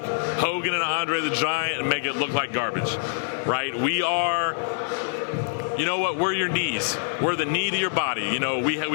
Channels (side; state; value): right; silent; digital silence